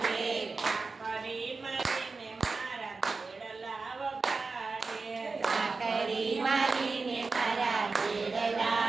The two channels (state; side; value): quieter; left; 4.2 dB